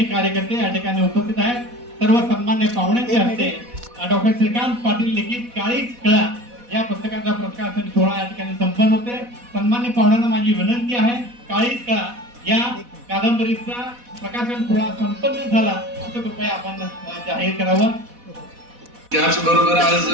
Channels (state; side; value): late; left; 4.1 ms